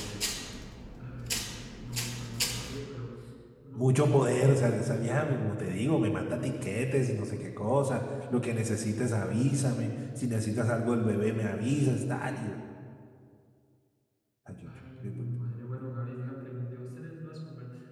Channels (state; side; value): identical; both; correlation 1.00